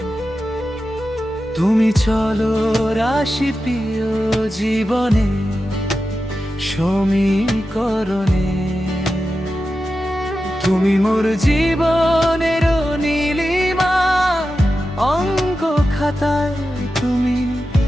তুমি চলো রাশি প্রিয় জীবনে, সমীকরণে। তুমি মোর জীবনের নীলিমা, অঙ্ক খাতায় তুমি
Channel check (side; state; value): both; normal; correlation 0.91